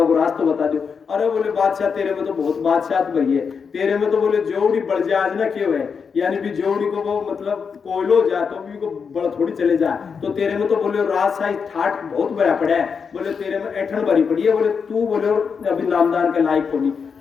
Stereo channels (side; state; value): right; quieter; 6.0 dB